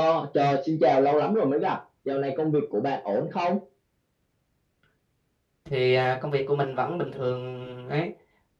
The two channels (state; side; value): identical; both; correlation 1.00